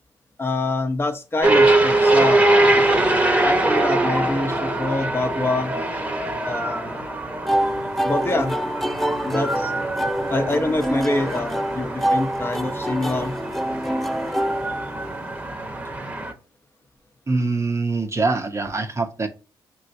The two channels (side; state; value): both; normal; correlation 0.82